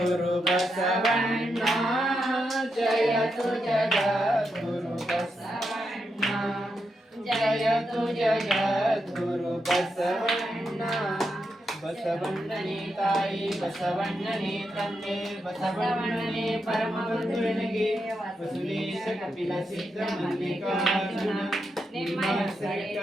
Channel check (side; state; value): both; normal; correlation 0.84